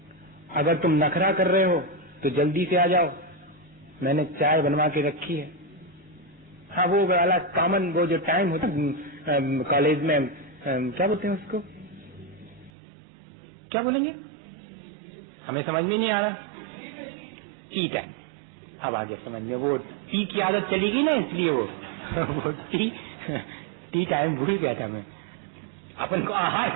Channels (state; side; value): drops out; left; at 12.7 s